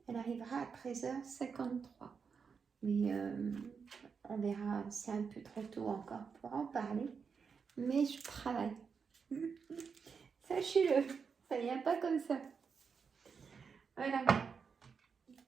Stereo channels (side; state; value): left; quieter; 5.8 dB